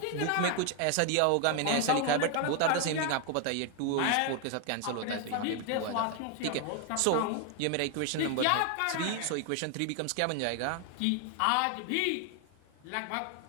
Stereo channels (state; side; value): different; both; correlation 0.01